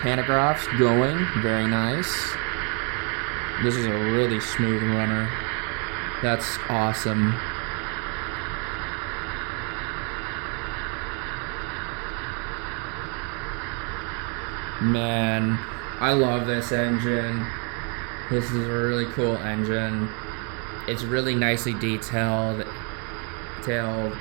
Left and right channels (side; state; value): left; quieter; 37.0 dB